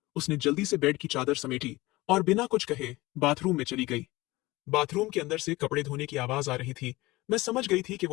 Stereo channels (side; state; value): right; quieter; 20.3 dB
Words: उसने जल्दी से बेड की चादर समेटी और बिना कुछ कहे बाथरूम में चली गई। बाथरूम के अंदर से कपड़े धोने की आवाज आ रही थी। मैं समझ गई थी कि